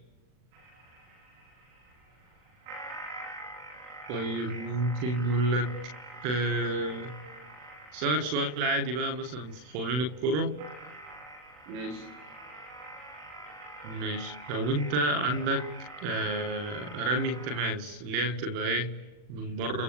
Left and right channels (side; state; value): left; late; 40 ms